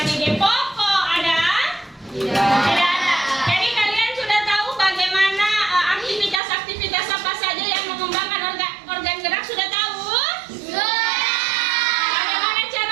ide pokok. Ada? Tidak ada. Jadi kalian sudah tahu bagaimana aktivitas apa saja yang mengembangkan organ gerak, sudah tahu? Bagaimana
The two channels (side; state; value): left; drops out; at 6.4 s